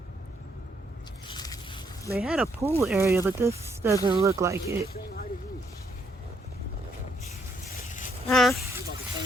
They had a pool area, but this doesn't look like it. Huh?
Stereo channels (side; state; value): both; normal; correlation 0.73